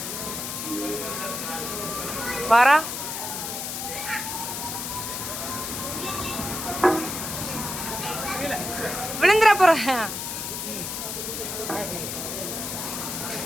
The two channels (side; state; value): left; noise; hiss, 4 dB below the sound